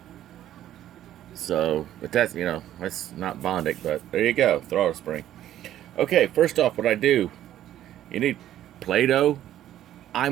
So, but that's, you know, that's not Bondic, but there you go, throttle spring. Okay, first off, what I do, you need Play-Doh.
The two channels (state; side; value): quieter; left; 12.2 dB